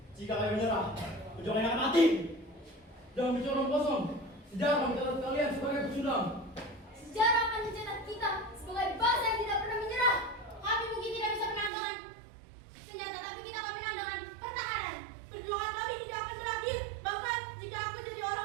Jika kami menyerah, perjuangan akan mati. Jangan bicara omong kosong. Sejarah mencatat kalian sebagai pecundang. Sejarah akan mencetak kita sebagai bangsa yang tidak pernah menyerah. Kami mungkin tidak bisa menandangkan senjata, tapi kita akan menandangkan pertahanan. Perjuangan kami tidak akan berakhir. Bahkan jika aku jadi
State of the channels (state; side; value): drops out; left; at 11.7 s